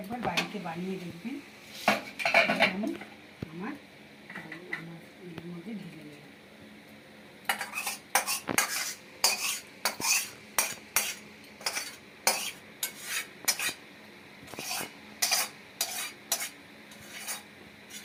বাড়িতে বানিয়ে দেখবেন। আমি আমার এর মধ্যে ঢেলে নেব।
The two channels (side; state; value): both; identical; correlation 1.00